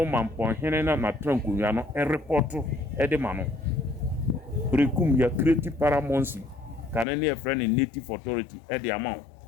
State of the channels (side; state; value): right; drops out; at 7.1 s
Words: Mampon hene na trankunya no report e de ma no brekum ya create paramount kanene a friend in native authority e de amount